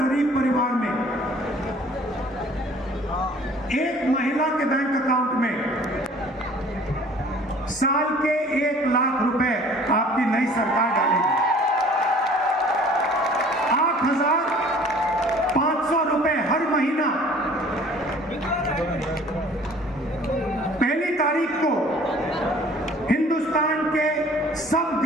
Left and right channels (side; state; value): both; normal; correlation 0.51